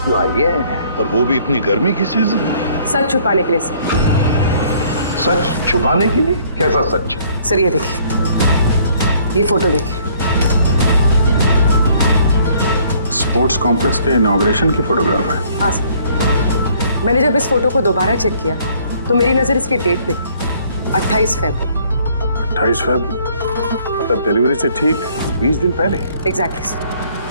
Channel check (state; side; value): inverted; both; correlation -0.61